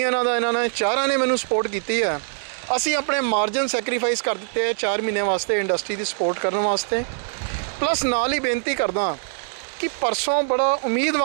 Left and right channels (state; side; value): silent; left; 63 dB below the other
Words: ਦਾ, ਇਹਨਾਂ ਨੇ ਚਾਰਾਂ ਨੇ ਮੈਨੂੰ ਸਪੋਰਟ ਕੀਤੀ ਹੈ। ਅਸੀਂ ਆਪਣੇ ਮਾਰਜਨ ਸੈਕਰੀਫਾਈਸ ਕਰ ਦਿੱਤੇ ਹੈ 4 ਮਹੀਨੇ ਵਾਸਤੇ ਇੰਡਸਟਰੀ ਦੀ ਸਪੋਰਟ ਕਰਨ ਵਾਸਤੇ। ਪਲੱਸ ਨਾਲ ਹੀ ਬੇਨਤੀ ਕਰਦਾ ਕਿ ਪਰਸੋਂ ਬੜਾ